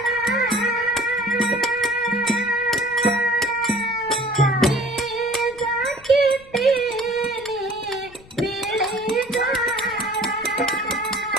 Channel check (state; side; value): noise; left; rumble, 23 dB below the sound